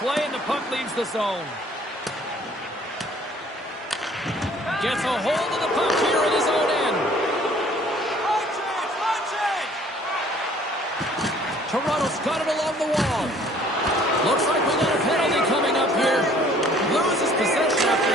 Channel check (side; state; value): both; normal; correlation 0.56